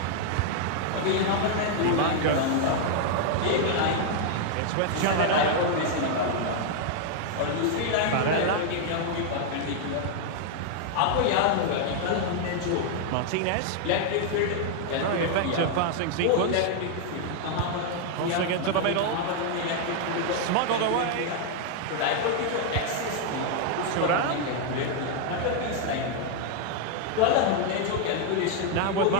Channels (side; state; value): both; different; correlation 0.00